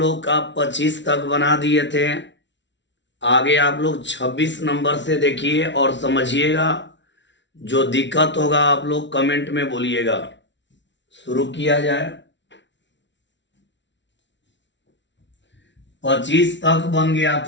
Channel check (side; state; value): right; late; 0.52 ms